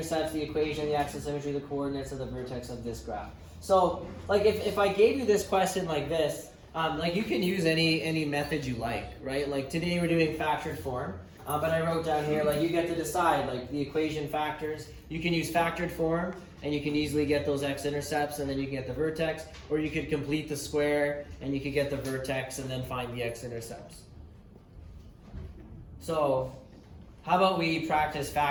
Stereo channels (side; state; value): both; identical; correlation 1.00